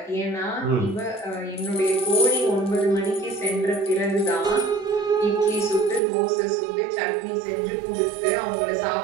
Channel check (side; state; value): left; drops out; at 6.0 s